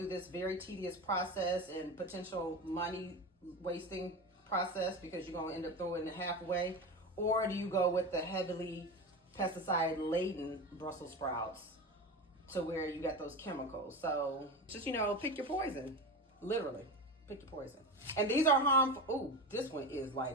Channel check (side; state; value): both; normal; correlation 0.25